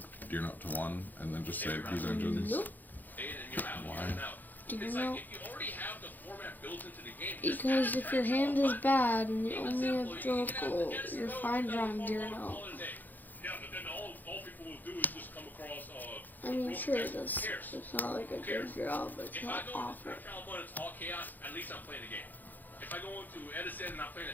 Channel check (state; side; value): late; right; 0.085 ms